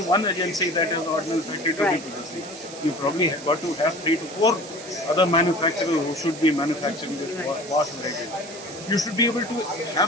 one agency, that is Ordnance Factory, to be producing. You probably have got to have 3 to 4 other manufacturers who should be manufacturing this vast range. You should be able to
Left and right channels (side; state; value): right; noise; hiss, 14 dB below the sound